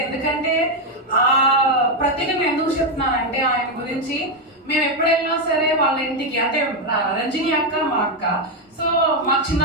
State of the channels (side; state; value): both; normal; correlation 0.04